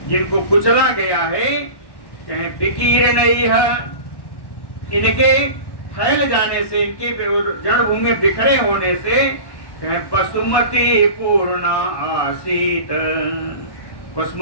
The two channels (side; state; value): right; late; 1.1 ms